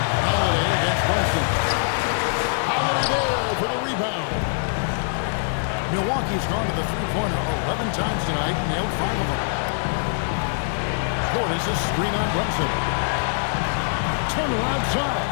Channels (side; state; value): right; silent; 63 dB below the other